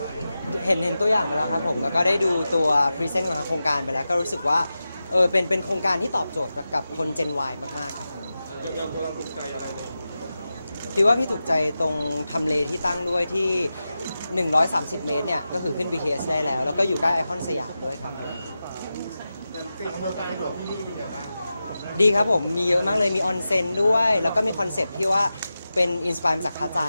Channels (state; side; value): inverted; both; correlation -0.93